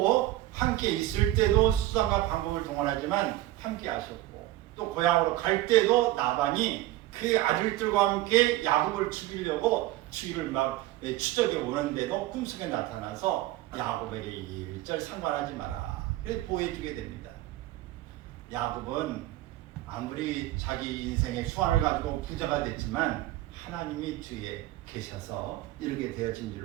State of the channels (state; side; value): quieter; left; 16.0 dB